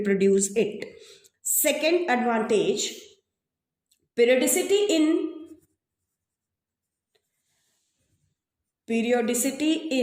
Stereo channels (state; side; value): identical; both; correlation 1.00